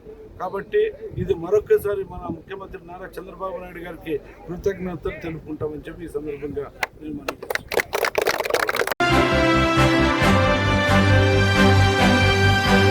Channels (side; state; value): both; identical; correlation 1.00